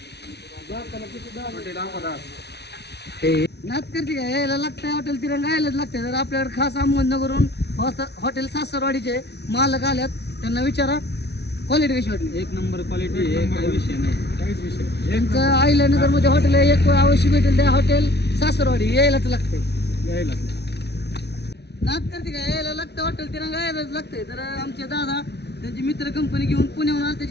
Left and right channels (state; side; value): late; right; 0.49 ms